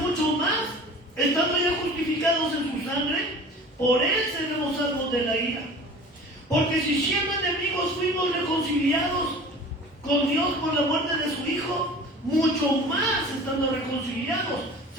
más, estando ya justificados en su sangre, por él seremos salvos de la ira. Porque si siendo enemigos fuimos reconciliados con Dios por la muerte de su Hijo, mucho más estando reconciliados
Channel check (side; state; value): both; normal; correlation 0.42